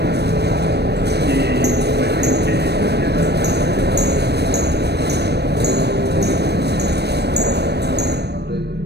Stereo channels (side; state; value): left; late; 0.48 ms